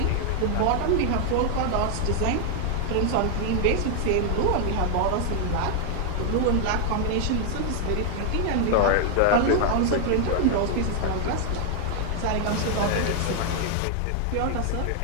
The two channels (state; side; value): different; both; correlation 0.00